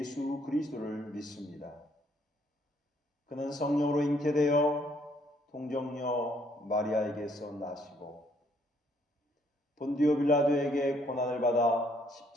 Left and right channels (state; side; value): normal; both; correlation 0.67